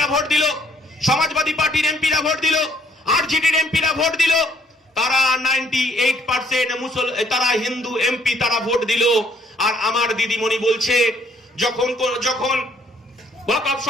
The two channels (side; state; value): both; normal; correlation 0.65